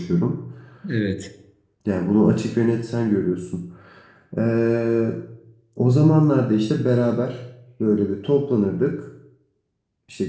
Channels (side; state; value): both; identical; correlation 1.00